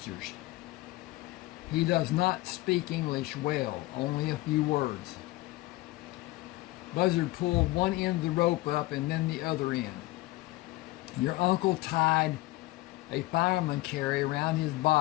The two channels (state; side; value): quieter; right; 18.9 dB